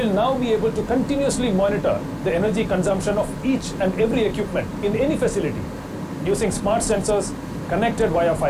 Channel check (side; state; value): both; identical; correlation 1.00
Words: now be able to continuously monitor the energy consumption of each and every equipment in any facility using smart sensors connected via